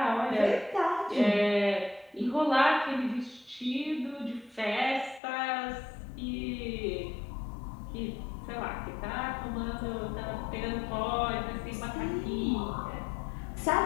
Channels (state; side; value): drops out; right; at 5.2 s